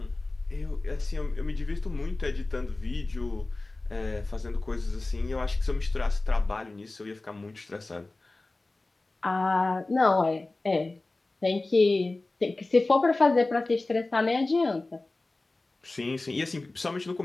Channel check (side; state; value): right; quieter; 3.1 dB